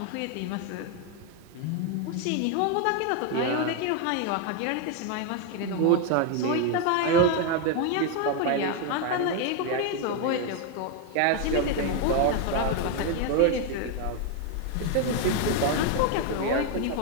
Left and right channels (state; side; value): different; both; correlation 0.01